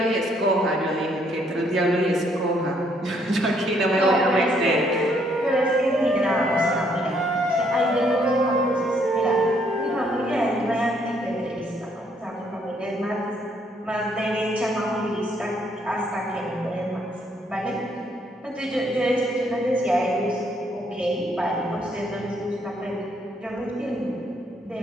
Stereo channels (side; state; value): both; normal; correlation 0.69